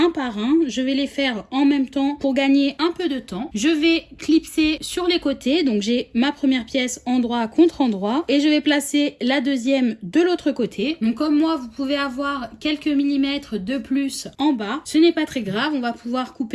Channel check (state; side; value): identical; both; correlation 1.00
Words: par un, je vais les faire en même temps pour gagner un peu de temps. Je vais clipser sur les côtés, donc j'ai ma première pièce endroit contre endroit et je vais placer la deuxième de l'autre côté. Donc comme moi vous pouvez avoir quelques millimètres de plus en bas, ce n'est pas très grave, on va pouvoir